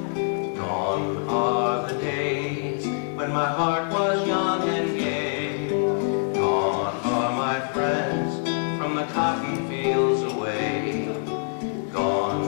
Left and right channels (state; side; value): silent; right; digital silence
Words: Gone are the days when my heart was young and gay. Gone are my friends from the cotton fields away.